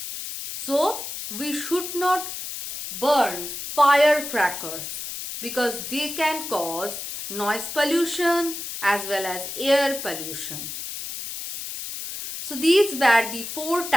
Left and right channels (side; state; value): left; noise; hiss, 7 dB below the sound